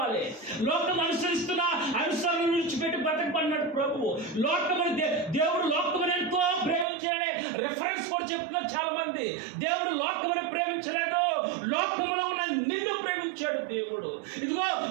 లోకం అనుసరిస్తున్న అనుసరణ విడిచిపెట్టి బ్రతకమన్నాడు ప్రభువు. దేవుడు లోకమును ఎంతో ప్రేమించాడనే రెఫరెన్స్ కూడా చెప్తున్నారు చాలా మంది. దేవుడు లోకమును ప్రేమించలేదు, లోకములో ఉన్న నిన్ను ప్రేమించాడు దేవుడు. ఇదిగో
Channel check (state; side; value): drops out; left; at 6.9 s